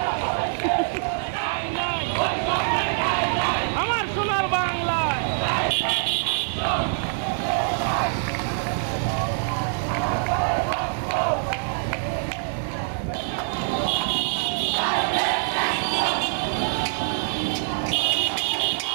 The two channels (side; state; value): left; silent; digital silence